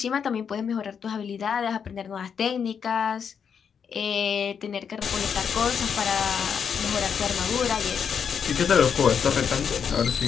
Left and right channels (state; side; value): quieter; right; 7.1 dB